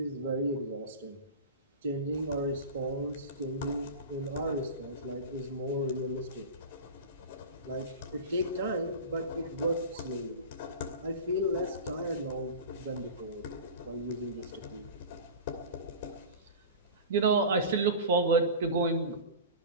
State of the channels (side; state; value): both; inverted; correlation -0.31